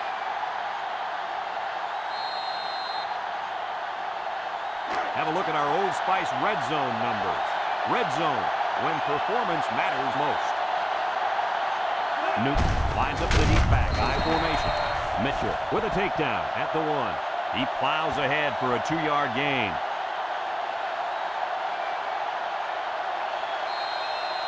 Have a look at our Old Spice red zone numbers. Red zone, when performance matters most. Newton lines up the deep back, I formation. Mitchell with a takedown at the 1. He plows ahead for a 2-yard gain.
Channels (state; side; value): identical; both; correlation 1.00